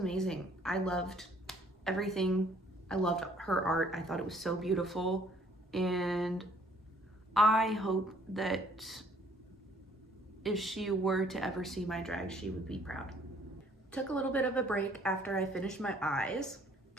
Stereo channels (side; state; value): both; normal; correlation 0.61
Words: I loved everything. I loved her art. I thought it was so beautiful. And I hope that if she were to ever see my drag, she would be proud. Took a little bit of a break after I finished my eyes.